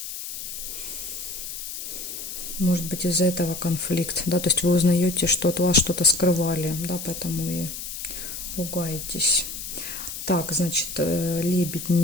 Может быть, из-за этого конфликт, да, то есть вы узнаете, что от вас что-то скрывали, да, поэтому и ругаетесь. Так, значит, лебедь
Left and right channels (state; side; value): noise; left; hiss, 8 dB below the sound